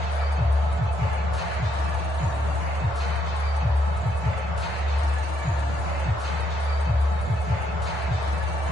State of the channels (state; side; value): normal; both; correlation 0.74